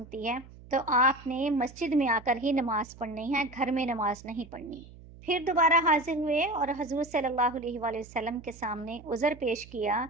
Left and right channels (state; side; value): noise; right; hum, 19 dB below the sound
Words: है तो आपने मस्जिद में आकर ही नमाज पढ़नी है, घर में नमाज नहीं पढ़नी। फिर दोबारा हाजिर हुए और हजूर सल्लल्लाहु अलैहि वसल्लम के सामने उज़र पेश किया।